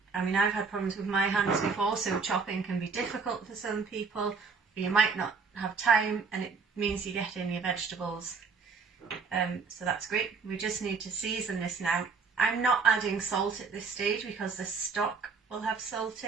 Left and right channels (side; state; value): left; quieter; 5.0 dB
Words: I mean I've had problems with my hands before, so chopping can be difficult for some people, or you might not have time and it means you get in your vegetables. So that's great. We just need to season this now. I'm not adding salt at this stage because the stock will have salt